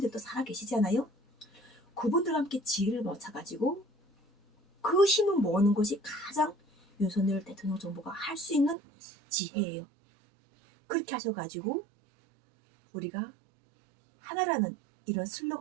살아계시잖아요. 그분들과 함께 지혜를 모아가지고 그 힘을 모으는 것이 가장 윤석열 대통령 정부가 할 수 있는 지혜예요. 그렇게 하셔가지고 우리가 하나라는 이런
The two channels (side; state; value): left; drops out; at 8.8 s